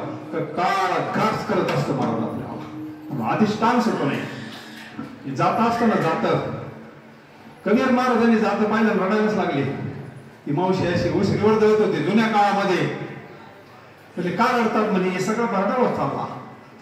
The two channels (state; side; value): identical; both; correlation 1.00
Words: तर काळ घास करत असतं महाराज आपल्याला. अधिष्ठान सुटू नये. जात असताना जात कबीर महाराजांनी जात पाहिलं रडायलाच लागले. ती मावशी अशी उशीवर जळत होती जुन्या काळामध्ये. म्हणजे का रडतात म्हणे? हे सगळं भरडावर चालला,